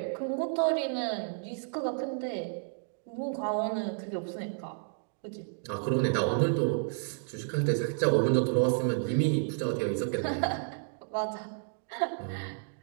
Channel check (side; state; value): left; silent; digital silence